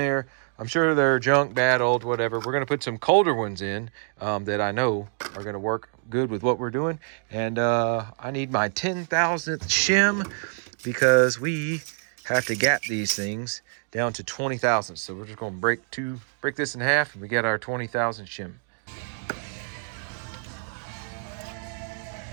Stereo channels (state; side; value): silent; left; 61 dB below the other